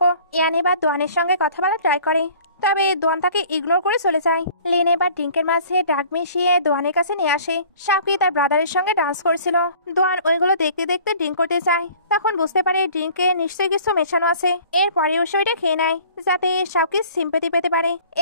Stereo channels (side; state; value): both; inverted; correlation -0.50